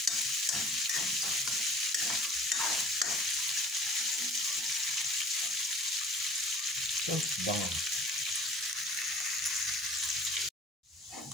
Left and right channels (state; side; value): normal; both; correlation 0.48